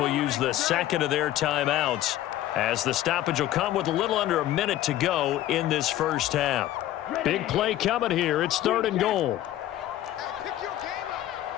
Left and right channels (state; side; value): quieter; right; 13.5 dB